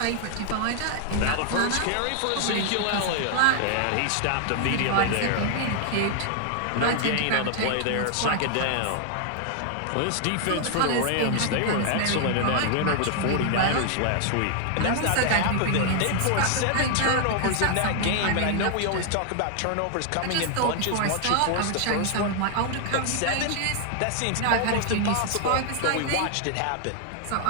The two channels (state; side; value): different; both; correlation 0.00